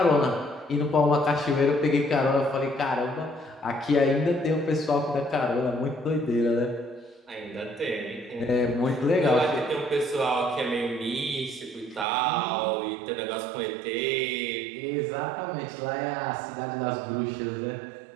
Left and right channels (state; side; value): drops out; left; at 12.1 s